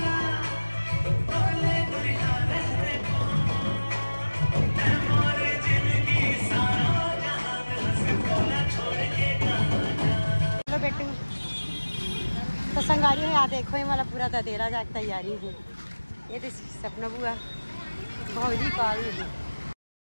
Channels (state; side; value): inverted; both; correlation -1.00